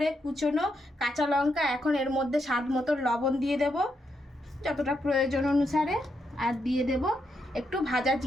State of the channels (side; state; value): both; normal; correlation 0.81